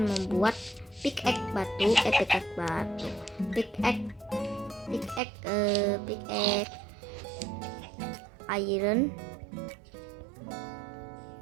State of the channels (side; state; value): left; drops out; at 5.2 s